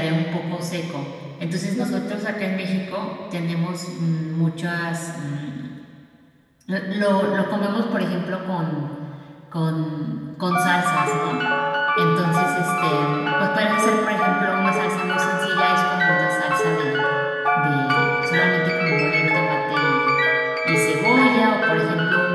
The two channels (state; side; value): identical; both; correlation 1.00